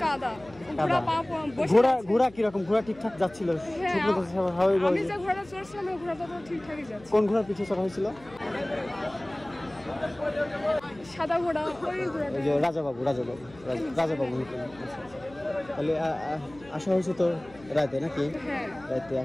কাদা ঘোড়া কিরকম ঘোড়া ঠিকঠাক যাচ্ছিল আমি যে ঘোড়াটা চড়ছিলাম ওই ঘোড়াটা তো ঠিকঠাকই যাচ্ছে কোন ঘোড়ার পিঠে চড়া হয়েছিল সাদা ঘোড়া ওই ঘোড়াটা রাজাবাবু তাহলে আসা হয়েছে তো রাতে নাকি রাতে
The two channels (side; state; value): left; noise; hum, 23 dB below the sound